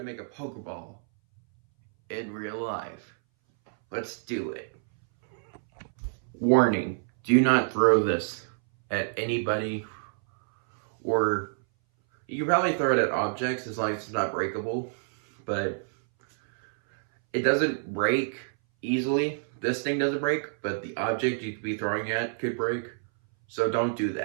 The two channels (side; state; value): left; silent; 60 dB below the other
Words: make a Pokeball in real life. Let's do it. Warning, do not throw this at anybody, or you can probably throw it at objects as long as it's not breakable, but it doesn't break easily. This thing doesn't break, but the object you could be throwing at could break, so don't do